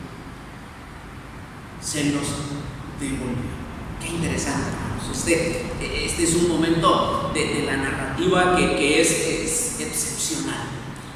se los devolvió. Qué interesante, hermanos. Este es un momento de la narrativa que es excepcional.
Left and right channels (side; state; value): both; identical; correlation 1.00